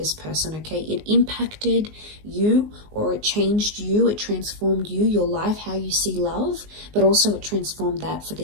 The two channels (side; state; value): left; late; 19 ms